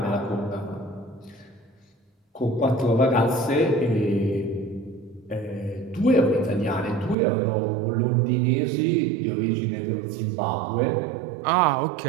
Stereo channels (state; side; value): drops out; left; at 7.2 s